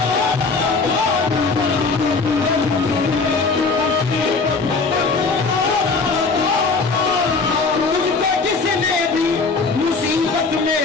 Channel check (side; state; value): right; quieter; 4.2 dB